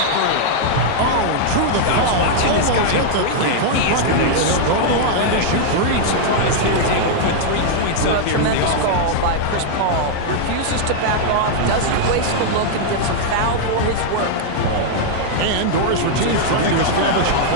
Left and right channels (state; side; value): different; both; correlation -0.01